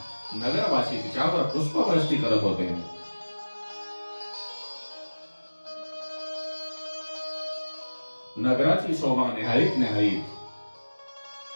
नगरवासी तिच्यावर पुष्पवृष्टी करत होते. नगराची शोभा निहाळीत निहाळीत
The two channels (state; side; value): inverted; both; correlation -1.00